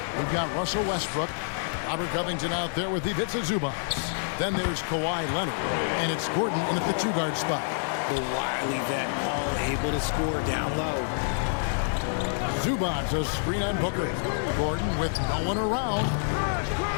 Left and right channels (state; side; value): silent; right; 60 dB below the other